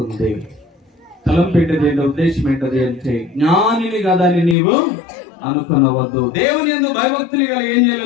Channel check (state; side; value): drops out; right; at 4.5 s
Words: తలంపేటది ఏంటో, ఉద్దేశం ఏంటది అంటే, జ్ఞానిని కదా అని నీవు అనుకునవద్దు. దేవుని యందు భయభక్తులు కలిగి ఏం